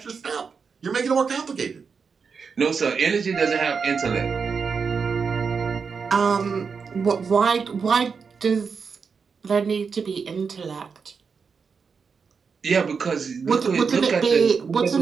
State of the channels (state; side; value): quieter; left; 5.6 dB